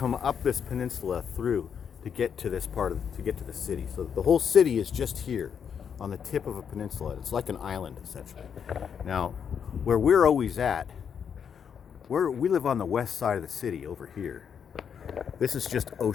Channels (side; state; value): right; quieter; 7.5 dB